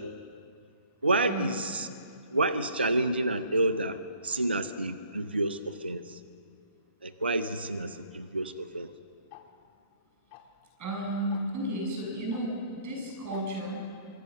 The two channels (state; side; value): inverted; both; correlation -0.60